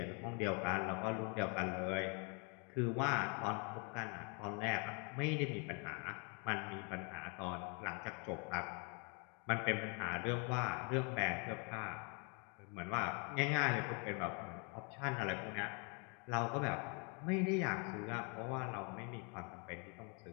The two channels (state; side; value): quieter; right; 35.1 dB